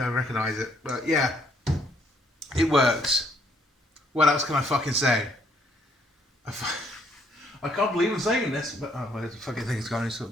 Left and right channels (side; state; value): both; normal; correlation 0.68